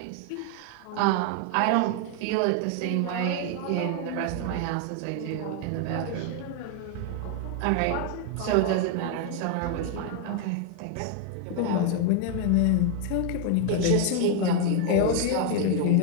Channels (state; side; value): different; both; correlation 0.00